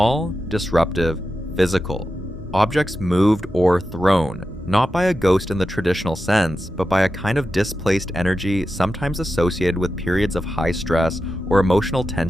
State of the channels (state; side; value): normal; both; correlation 0.91